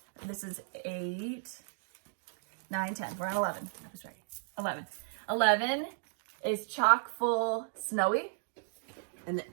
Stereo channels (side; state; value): left; silent; digital silence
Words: This is 8, 9, 10. We're on 11. I was right. 11. 11 is Chock Full Snowy. And